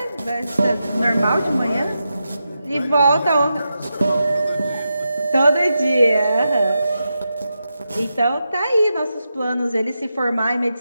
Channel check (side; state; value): both; inverted; correlation -0.88